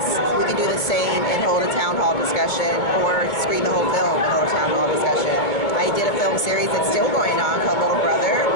We can do the same and hold a town hall discussion, or screen the whole film and hold a town hall discussion. I did a film series that's still going on called Little Brother,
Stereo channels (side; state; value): right; late; 2.3 ms